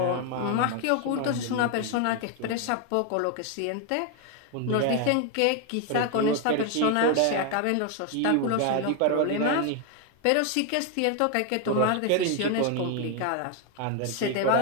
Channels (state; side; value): different; both; correlation 0.01